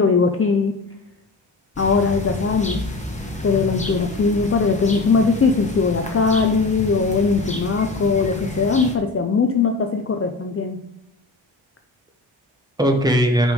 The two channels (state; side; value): quieter; right; 3.5 dB